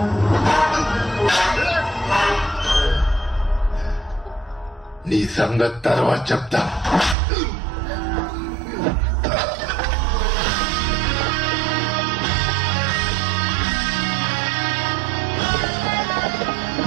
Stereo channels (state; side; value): drops out; left; at 7.2 s